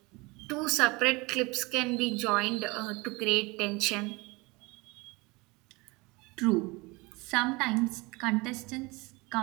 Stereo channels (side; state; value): left; quieter; 25.1 dB